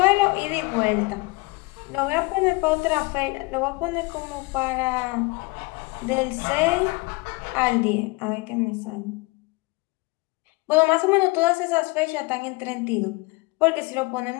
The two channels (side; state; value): right; quieter; 26.3 dB